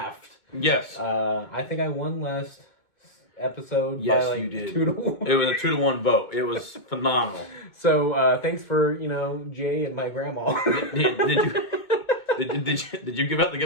Yes. I think I won last episode. Yes, by like you did. 2-1. It was a 2-1 vote. It was phenomenal. So thanks for Jay and my grandma. Did you give out the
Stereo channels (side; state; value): right; late; 2.2 ms